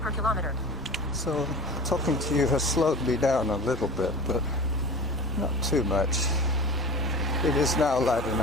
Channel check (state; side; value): normal; both; correlation 0.34